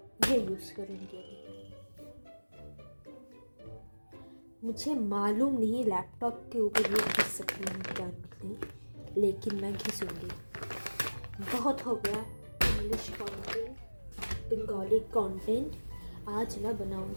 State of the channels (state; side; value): inverted; both; correlation -1.00